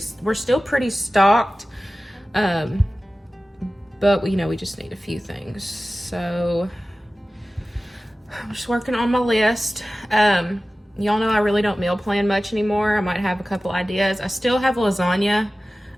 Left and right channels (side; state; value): both; normal; correlation 0.96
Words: still pretty stocked. But we just need a few things. So I'm just working on my list. Y'all know I really don't meal plan much anymore. I might have a couple ideas. I still have lasagna.